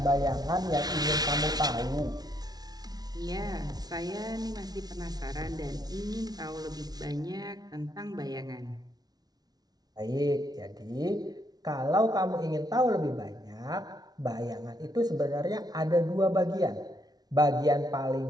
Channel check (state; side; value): late; left; 0.19 ms